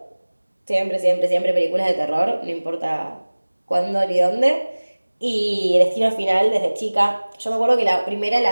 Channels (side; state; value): both; inverted; correlation -1.00